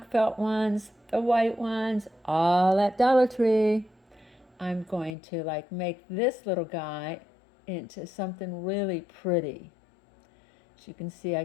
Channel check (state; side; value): drops out; right; at 5.2 s